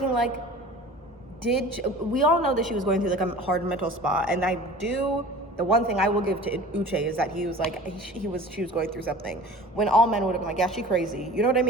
like, we all know that she was going through like a hard mental spot, and the one thing I will give to Uche is that he was like, she was going through something, when all men would have been like, yeah, she crazy. You know what I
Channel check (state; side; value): normal; both; correlation 0.42